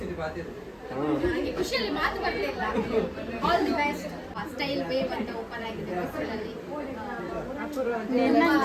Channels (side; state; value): both; identical; correlation 1.00